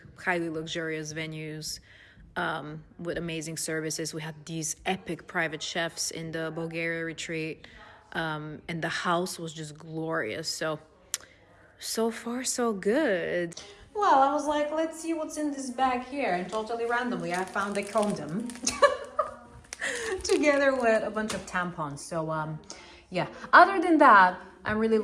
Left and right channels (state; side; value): identical; both; correlation 1.00